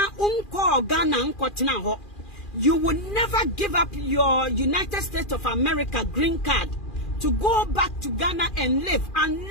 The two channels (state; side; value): late; right; 2.4 ms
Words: unko Ghana unko tina ho. You will never give up your United States of America green card to go back to Ghana and live